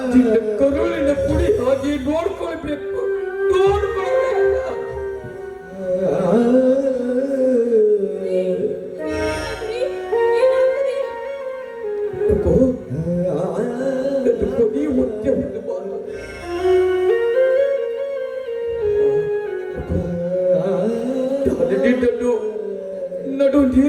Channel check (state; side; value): identical; both; correlation 1.00